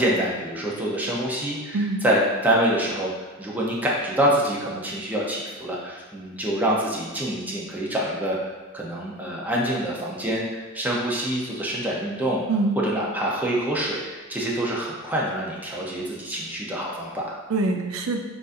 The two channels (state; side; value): normal; both; correlation 0.31